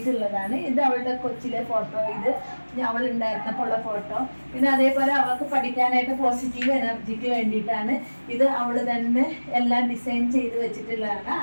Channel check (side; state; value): both; inverted; correlation -1.00